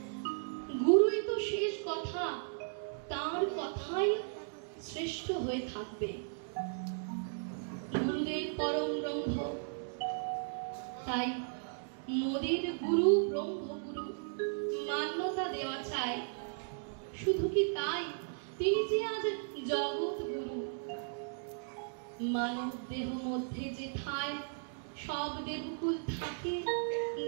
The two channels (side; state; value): left; silent; digital silence